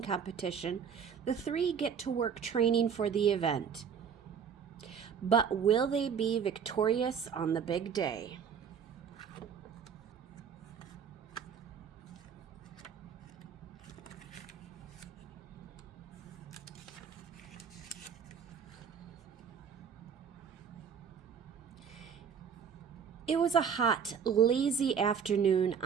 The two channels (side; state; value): left; quieter; 7.2 dB